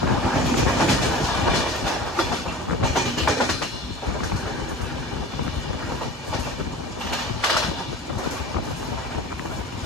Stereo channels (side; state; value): both; normal; correlation 0.37